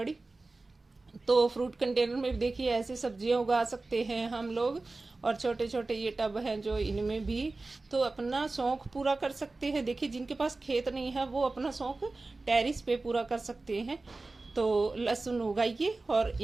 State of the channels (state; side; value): quieter; left; 3.4 dB